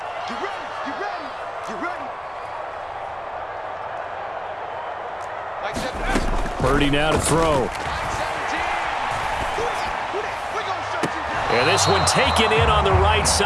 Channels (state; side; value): identical; both; correlation 1.00